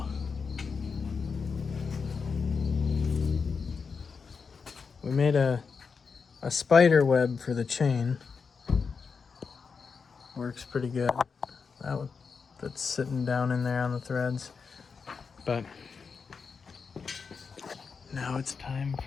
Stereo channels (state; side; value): quieter; right; 5.4 dB